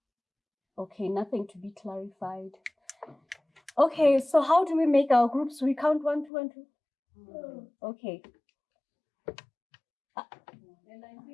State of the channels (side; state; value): right; drops out; at 6.3 s